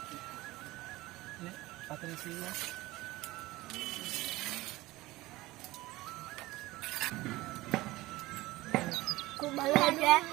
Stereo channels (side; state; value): left; quieter; 19.0 dB